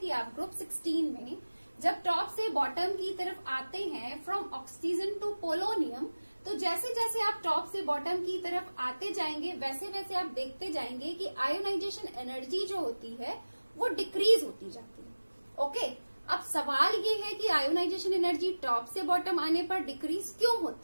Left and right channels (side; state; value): both; inverted; correlation -1.00